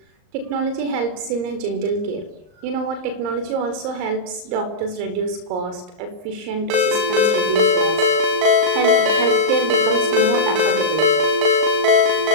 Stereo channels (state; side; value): late; left; 39 ms